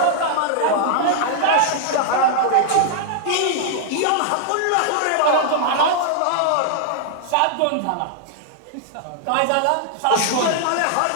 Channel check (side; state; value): both; different; correlation -0.01